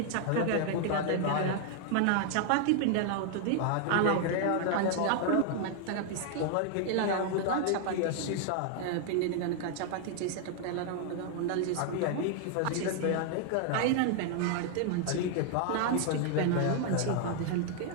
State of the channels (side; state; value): both; different; correlation 0.00